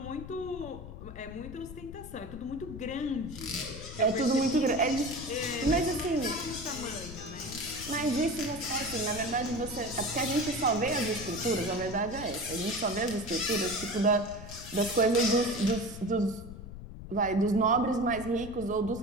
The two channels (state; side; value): noise; left; rumble, 12 dB below the sound